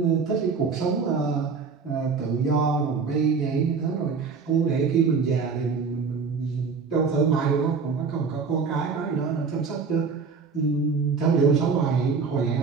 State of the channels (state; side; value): quieter; left; 5.2 dB